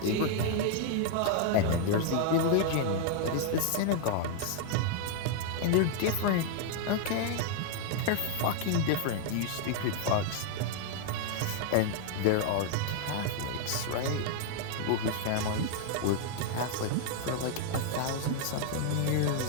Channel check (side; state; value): both; different; correlation 0.00